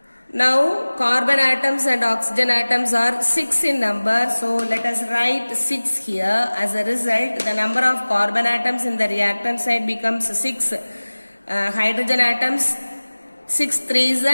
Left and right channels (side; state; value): both; inverted; correlation -1.00